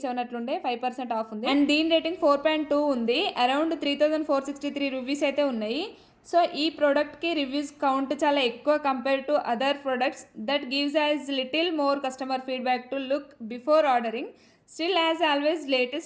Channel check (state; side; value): identical; both; correlation 1.00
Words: అట్లుండే, 5% ఆఫ్ ఉంది. అండ్ దీని రేటింగ్ 4.2 ఉంది. అరౌండ్ 3463 రూపీస్ అయితే ఉన్నాయి. సో ఈ ప్రోడక్ట్కి రివ్యూస్ కౌంట్ చాలా ఎక్కువ compare to other products. That gives as little more customer feedback to look before ordering. Still as always